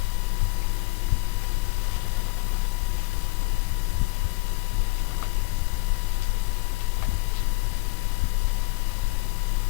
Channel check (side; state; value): right; quieter; 25.3 dB